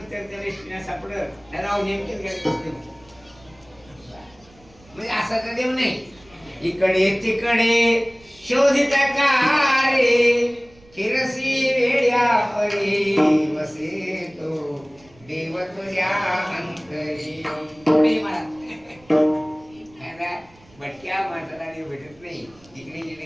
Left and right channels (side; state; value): right; noise; rumble, 28 dB below the sound